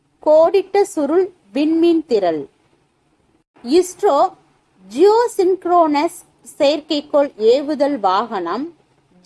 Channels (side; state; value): both; identical; correlation 1.00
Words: கோடிட்ட சுருள் விண்மீன் திரள். இஸ்ரோ ஜியோசின்க்ரோனஸ் செயற்கைக்கோள் ஏவுதல் வாகனம்